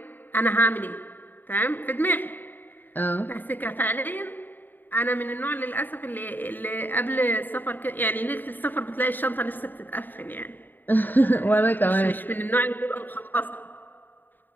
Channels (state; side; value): late; right; 0.090 ms